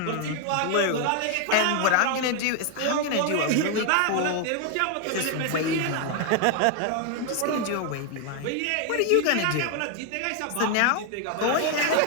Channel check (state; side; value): different; both; correlation 0.00